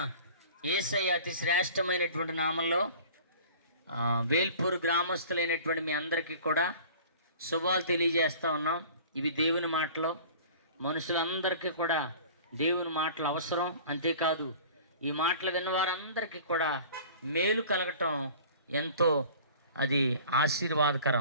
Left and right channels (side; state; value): both; inverted; correlation -0.44